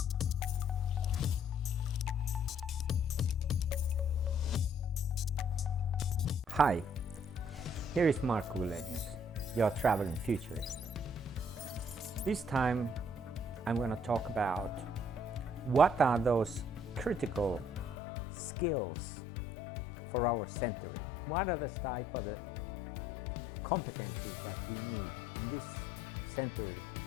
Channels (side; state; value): right; drops out; at 17.9 s